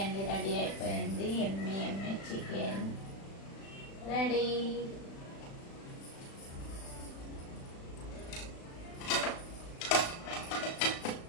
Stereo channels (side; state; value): right; late; 36 ms